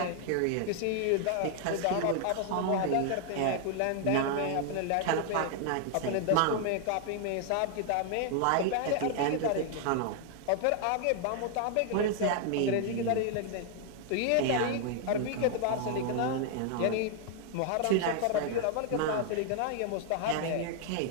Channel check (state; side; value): different; both; correlation 0.00